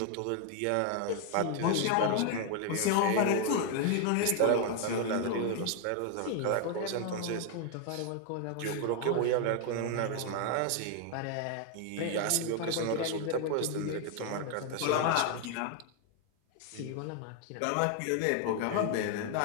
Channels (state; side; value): different; both; correlation 0.01